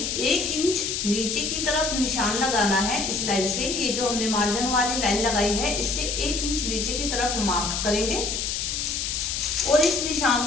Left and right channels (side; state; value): left; noise; hiss, 2 dB below the sound